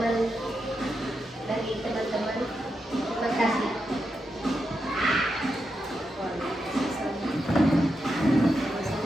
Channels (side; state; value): both; normal; correlation 0.86